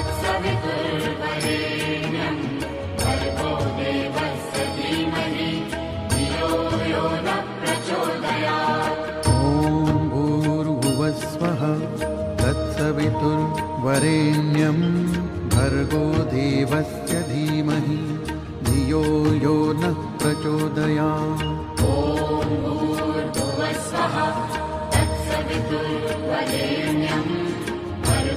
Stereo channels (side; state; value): both; identical; correlation 1.00